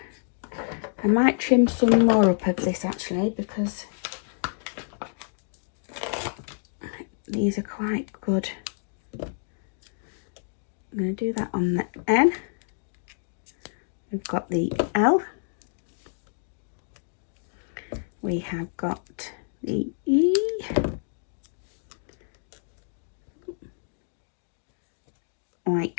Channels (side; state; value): right; silent; digital silence